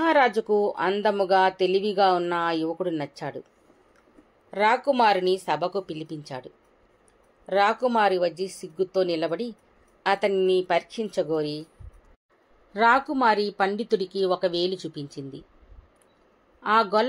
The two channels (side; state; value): both; identical; correlation 1.00